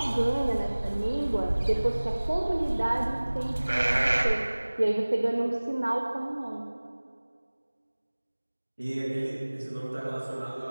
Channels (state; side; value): inverted; both; correlation -1.00